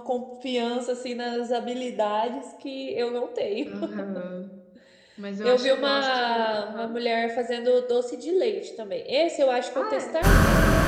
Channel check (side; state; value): both; identical; correlation 1.00